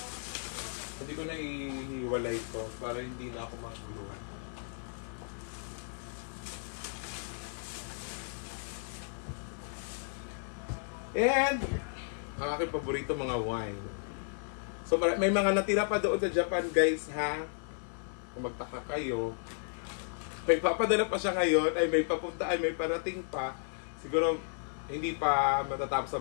hindi ko na ihiwalay to para hindi na ako maguluhan. And ang aking paborito mga wine. So may mga natira pa doon sa Japan guys ha. Kung magtaka kayo, may papadala pa siya ngayon, ay may papunta, ay may parating pa. Siguro hindi pa matatapos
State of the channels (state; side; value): silent; right; 55 dB below the other